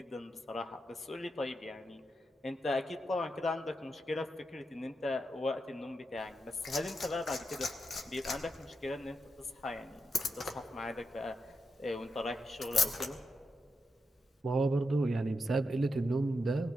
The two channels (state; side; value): normal; both; correlation 0.85